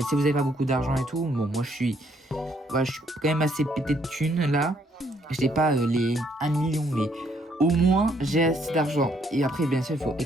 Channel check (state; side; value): normal; both; correlation 0.69